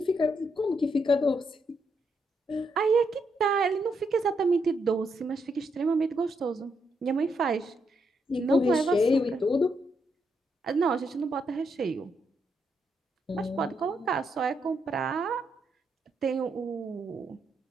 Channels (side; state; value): both; normal; correlation 0.79